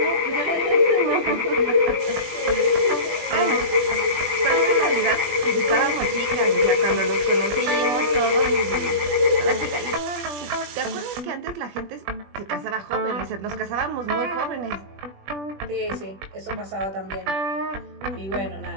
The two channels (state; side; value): late; left; 20 ms